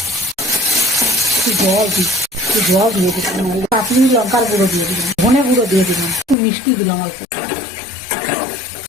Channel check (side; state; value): right; drops out; at 6.4 s